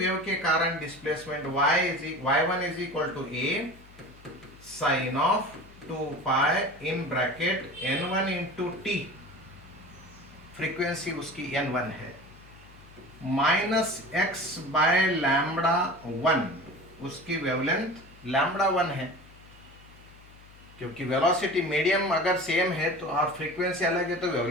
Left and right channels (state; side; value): noise; left; hum, 23 dB below the sound